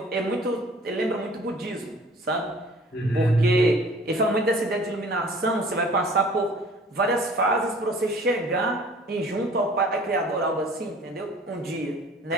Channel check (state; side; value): normal; both; correlation 0.50